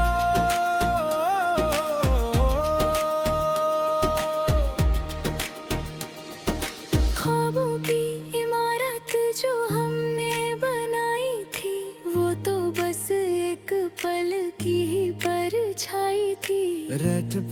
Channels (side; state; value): both; identical; correlation 1.00